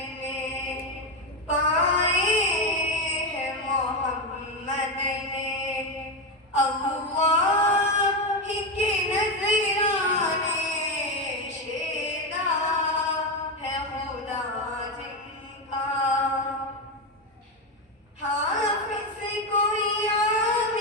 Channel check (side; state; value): both; normal; correlation 0.11